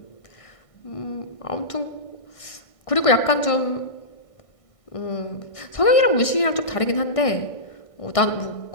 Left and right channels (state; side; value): late; right; 1.6 ms